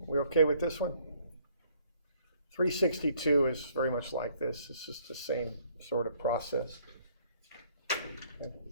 we okay with this one? 362 is very much like this. It's just the same sort of process. Okay.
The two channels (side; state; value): both; inverted; correlation -0.63